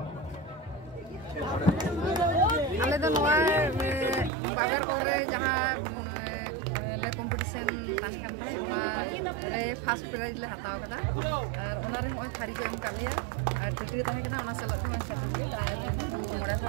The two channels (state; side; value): drops out; left; at 4.3 s